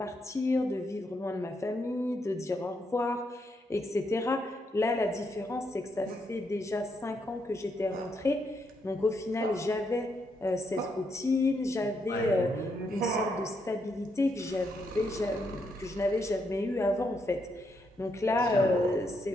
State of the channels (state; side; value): normal; both; correlation 0.79